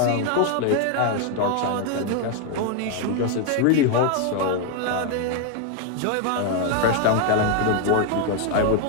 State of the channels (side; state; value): both; different; correlation 0.01